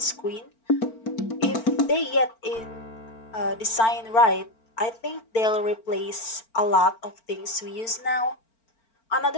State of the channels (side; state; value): right; late; 4.4 ms